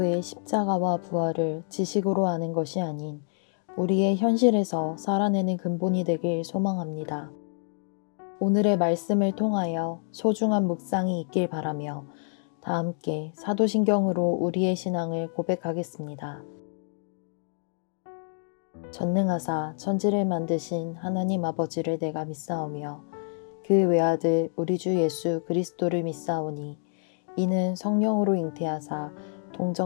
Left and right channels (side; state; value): right; silent; 60 dB below the other